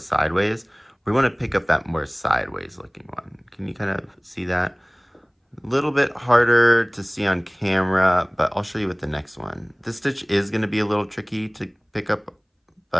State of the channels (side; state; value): both; identical; correlation 1.00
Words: We want to pick up that more sideways looking one. Can you kind of see that? A little bit harder to see on camera, but I'll show you with the next one. This stitch is going to be a little tricky to pick up,